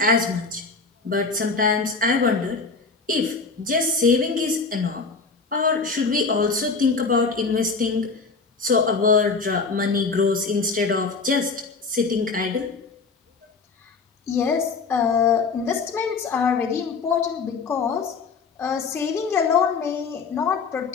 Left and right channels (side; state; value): right; quieter; 4.5 dB